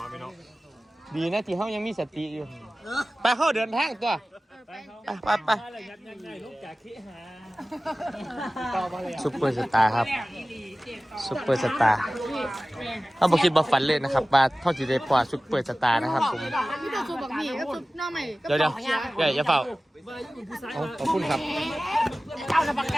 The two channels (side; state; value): both; normal; correlation 0.97